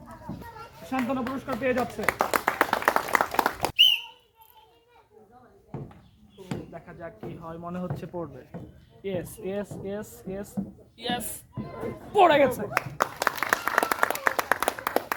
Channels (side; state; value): both; identical; correlation 1.00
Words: সান্ত্বনা পুরস্কার পেয়ে যাচ্ছে। দেখা যাক কি হয়। মনে হচ্ছে পড়বে। Yes, yes, yes, yes, yes. পড়ে গেছে।